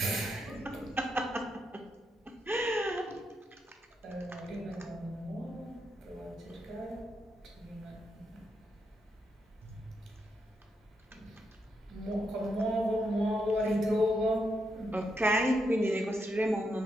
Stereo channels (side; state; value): both; normal; correlation 0.81